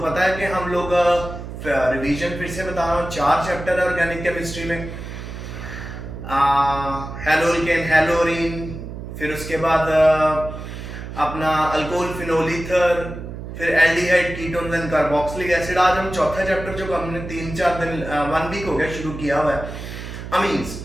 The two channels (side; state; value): right; noise; hum, 9 dB below the sound